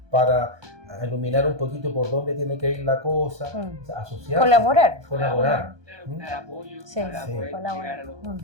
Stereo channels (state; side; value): late; left; 1.2 ms